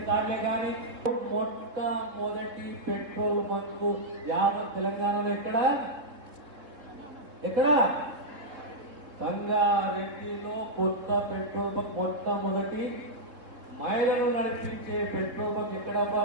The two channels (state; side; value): late; left; 3.7 ms